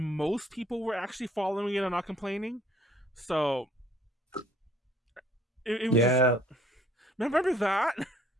people were actually following it and not complaining. So it was. Yeah. Remember that?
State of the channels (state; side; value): normal; both; correlation 0.59